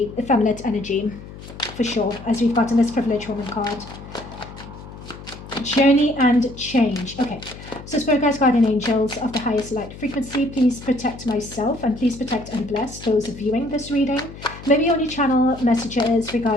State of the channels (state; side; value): noise; left; hum, 15 dB below the sound